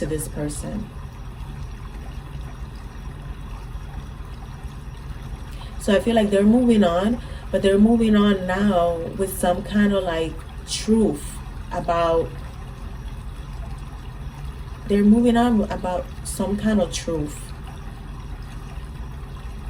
this person. So I feel like they're moving on, but they're moving on now with some kind of like truth about, they're moving on about some kind of truth.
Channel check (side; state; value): both; identical; correlation 1.00